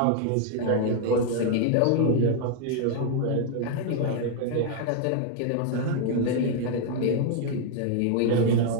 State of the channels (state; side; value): different; both; correlation 0.00